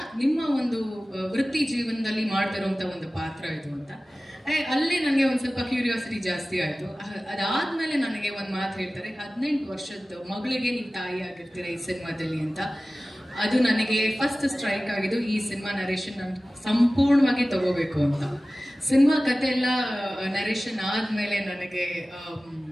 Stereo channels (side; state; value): both; normal; correlation 0.97